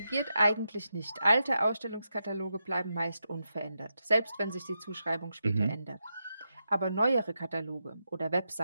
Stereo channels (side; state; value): both; inverted; correlation -0.86